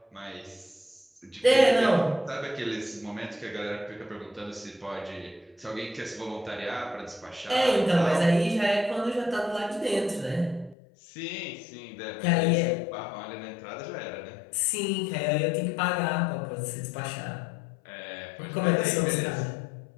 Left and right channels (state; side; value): drops out; right; at 10.8 s